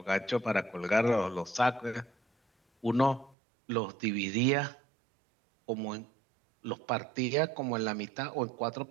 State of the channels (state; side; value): drops out; left; at 3.4 s